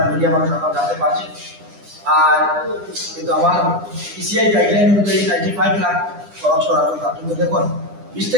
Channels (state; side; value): late; left; 9.9 ms